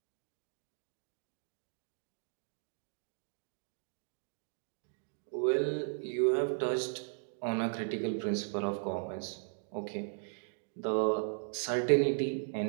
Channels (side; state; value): left; silent; digital silence